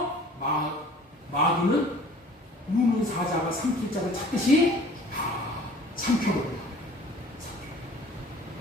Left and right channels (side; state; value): both; normal; correlation 0.48